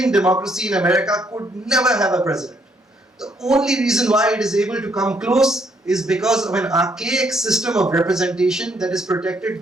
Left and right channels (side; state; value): both; normal; correlation 0.70